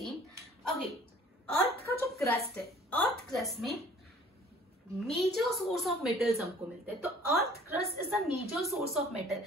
Okay, अर्थ का जो crust है, अर्थ क्रस्ट में मेजर सोर्स ऑफ मेटल्स हमको मिलते हैं. तो earth crust is the major source of metal.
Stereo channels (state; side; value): normal; both; correlation 0.52